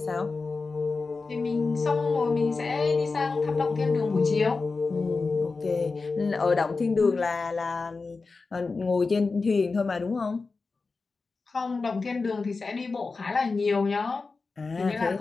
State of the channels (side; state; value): right; quieter; 4.1 dB